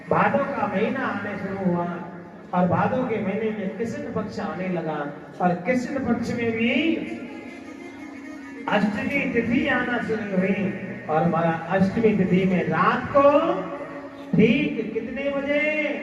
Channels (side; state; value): both; identical; correlation 1.00